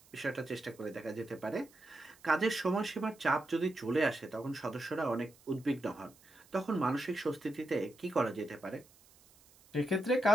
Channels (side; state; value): right; noise; hiss, 27 dB below the sound